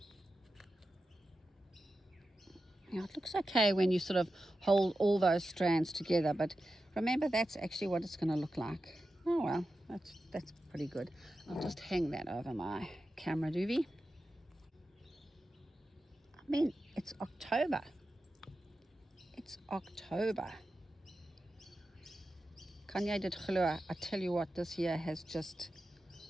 Yeah, it looks okay when you sort of hold all those strands together, but remember that's actually what it's going to look like. Oh well, that's pretty good. I'll just hang that over my camera doobie. I mean, it's October. It's October. Kanye did glo. I tell you what, this year has just,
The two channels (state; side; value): normal; both; correlation 0.91